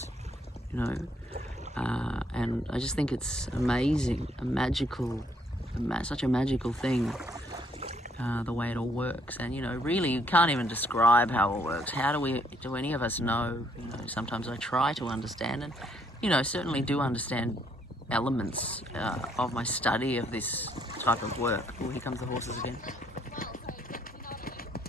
you know. And I just think it's amazing, such a magical thing, the way it all works. And, you know, really you can't even describe how it works. How do any of us know? You know, sometimes I try to understand, and, you know, certainly do understand elements of my study of this type of work. Oh, here comes the horses again.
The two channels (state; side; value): normal; both; correlation 0.68